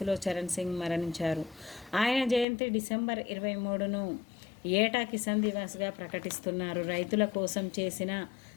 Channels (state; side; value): drops out; right; at 2.5 s